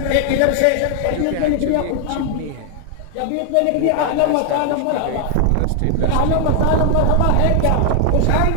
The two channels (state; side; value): different; both; correlation 0.00